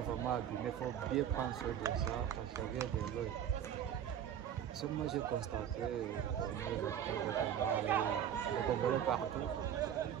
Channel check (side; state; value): left; quieter; 9.5 dB